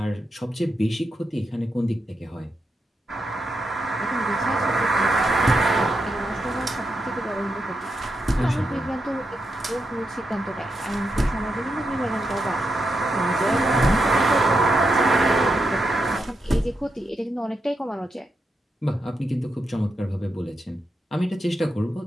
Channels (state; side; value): normal; both; correlation 0.84